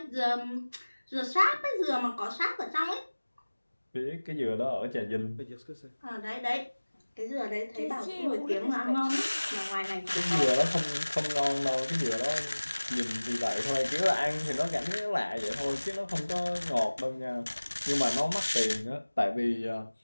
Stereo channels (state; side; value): inverted; both; correlation -1.00